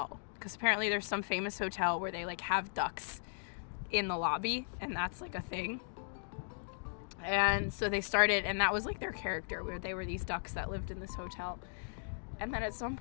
because apparently there's some famous hotel where they like have ducks in the lobby, and that's like a thing. And so they started, and that was like their character, where they were these ducks that lived in this hotel. And then at some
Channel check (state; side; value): silent; right; digital silence